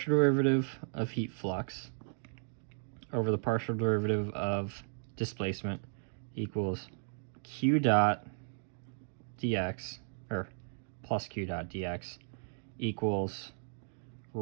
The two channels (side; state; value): left; silent; digital silence